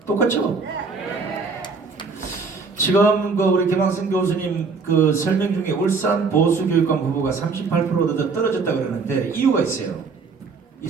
똑같죠? 지금 우리 김학생 교수님 그 설명 중에 울산 보수교육감 후보가 38% 떨어졌다 그러는데 이유가 있어요. 이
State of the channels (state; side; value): quieter; left; 4.6 dB